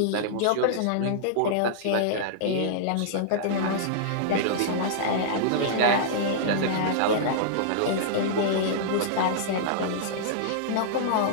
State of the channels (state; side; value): different; both; correlation -0.02